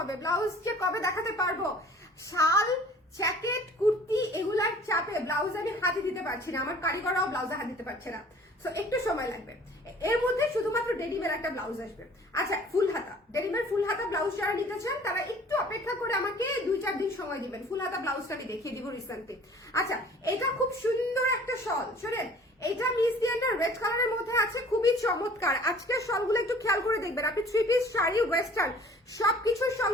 ব্লাউজ যে কবে দেখাতে পারবো। শাল, জ্যাকেট, কুর্তি এগুলার চাপে ব্লাউজ আমি হাতে দিতে পারছি না, আমার কারিগররাও ব্লাউজে হাত দিতে পারছে না। সো একটু সময় লাগবে। এর মধ্যে শুধুমাত্র ডেনিমের একটা ব্লাউজ আসবে। আচ্ছা, ফুল হাতা, ডেনিমের ফুল হাতা ব্লাউজ যারা নিতে চান তারা একটু অপেক্ষা করে আমাকে 2-4 দিন সময় দিবেন, ফুল হাতা ব্লাউজটা আমি দেখিয়ে দিব রিসেন্টলি। আচ্ছা, এটা খুব সুন্দর একটা শল, শোনেন, এটা মিস দিয়ানটা রেড কালারের মধ্যে আছে, খুবই চমৎকার। আজকের শলগুলো একটু খেয়াল করে দেখবেন, আপনি 3 পিস শাড়ি, ওয়েস্টার্ন সবকিছুর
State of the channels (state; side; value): normal; both; correlation 0.50